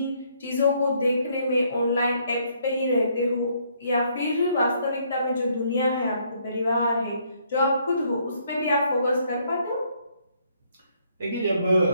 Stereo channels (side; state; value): both; inverted; correlation -0.69